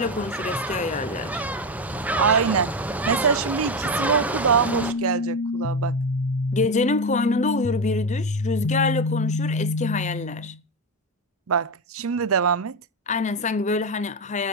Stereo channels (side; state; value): both; normal; correlation 0.14